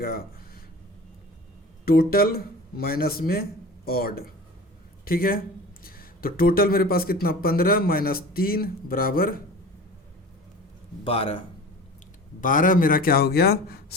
टोटल माइनस में ऑड। ठीक है, तो टोटल मेरे पास कितना, 15 माइनस 3 बराबर 12। 12 मेरा क्या हो गया,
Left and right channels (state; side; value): normal; both; correlation 0.37